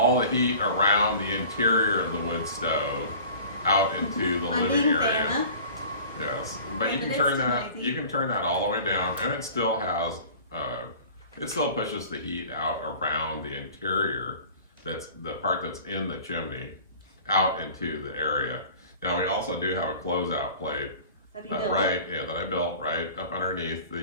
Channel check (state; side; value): inverted; both; correlation -0.44